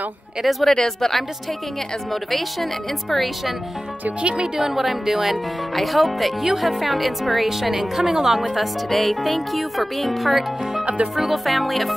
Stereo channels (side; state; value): both; normal; correlation 0.96